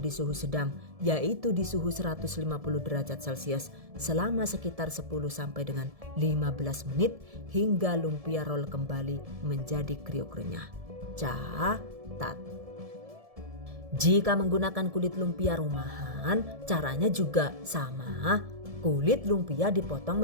di suhu sedang, yaitu di suhu 150 derajat Celcius selama sekitar 10 sampai dengan 15 menit hingga lumpia roll kembali menjadi kriuk renyah. Catat. Jika menggunakan kulit lumpia rumahan, caranya juga sama. Kulit lumpia dipotong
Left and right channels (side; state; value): left; late; 1.7 ms